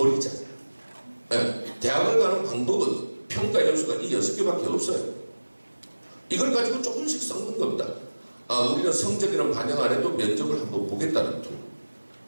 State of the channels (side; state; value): both; inverted; correlation -1.00